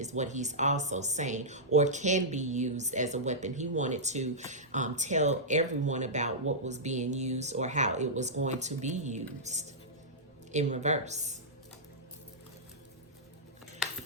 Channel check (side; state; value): both; normal; correlation -0.12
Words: what he's also saying, or can be used as a weapon. He wanted to tell everyone about what was being used or how it was going to be used. In reverse.